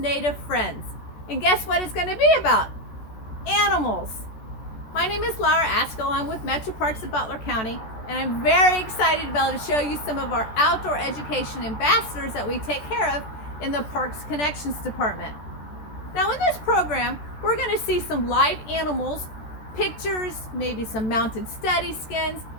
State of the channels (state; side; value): late; right; 14 ms